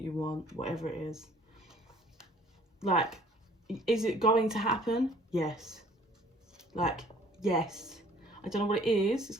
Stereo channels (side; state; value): both; normal; correlation 0.54